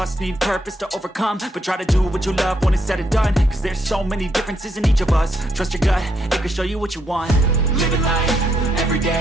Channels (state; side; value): normal; both; correlation 0.76